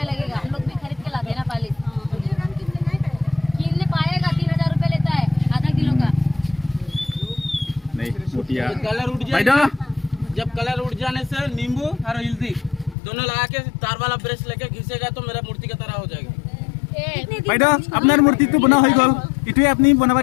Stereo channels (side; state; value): right; drops out; at 13.0 s